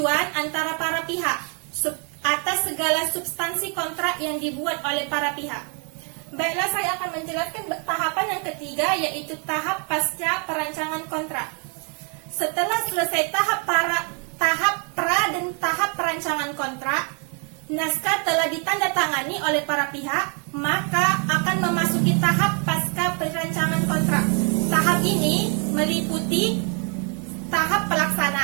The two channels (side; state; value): left; quieter; 38.8 dB